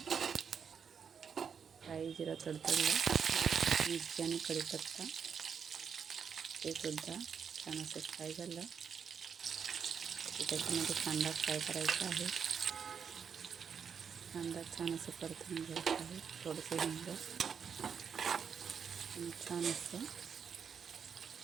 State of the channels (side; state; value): left; quieter; 6.8 dB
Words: राई जिरं तडतडलं, मिरची आणि कढीपत्ता ते सुद्धा छान असं फ्राय झालं. त्याच्यामध्ये कांदा फ्राय करायचा आहे. कांदा छान असं परतून घ्यायचा आहे. थोडंसं हिंग आणि छान असं